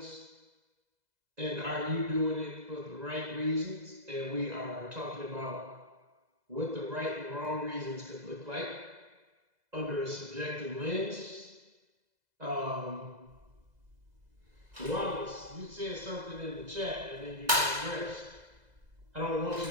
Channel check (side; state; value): left; late; 2.0 ms